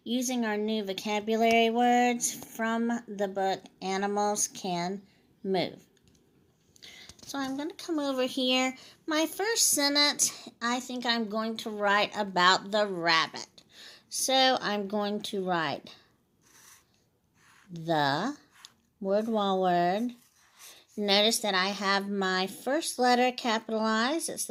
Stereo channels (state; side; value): identical; both; correlation 1.00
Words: using our new vocabulary words from the book Animals Can Move. So I'm going to come over here. My first sentence, I think I'm going to write about the rabbit. So I'm going to write the word-wall word. Notice that I have my first letter capitalized. It's